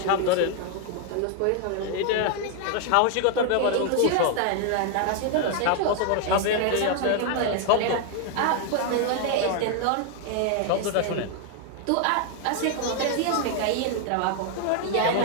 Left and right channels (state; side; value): different; both; correlation 0.01